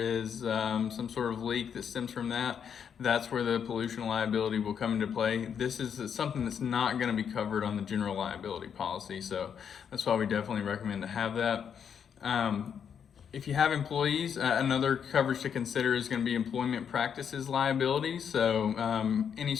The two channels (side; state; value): right; quieter; 7.7 dB